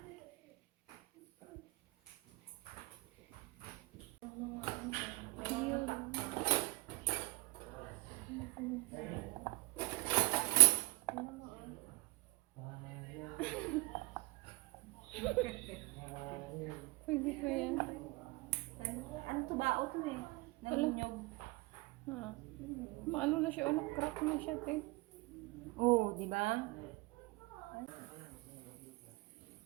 Pwede pa yan. Ano to ba? O to eh. Naninyog. Ha. Maano na siya, crack na siya, te. Oo, di ba?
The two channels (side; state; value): left; quieter; 24.0 dB